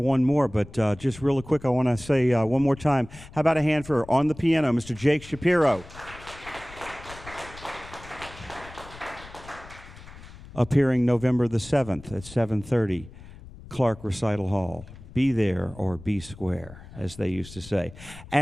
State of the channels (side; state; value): left; noise; rumble, 17 dB below the sound